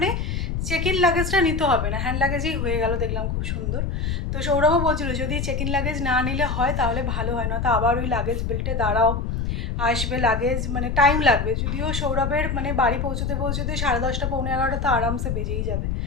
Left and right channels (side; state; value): left; noise; rumble, 1 dB below the sound